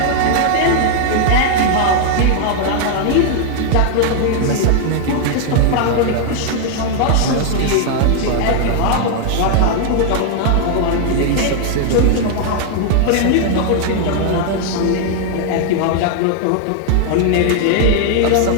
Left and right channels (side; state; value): both; different; correlation 0.00